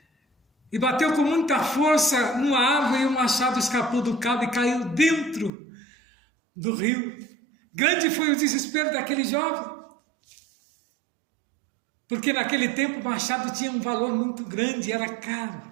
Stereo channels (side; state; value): left; drops out; at 5.5 s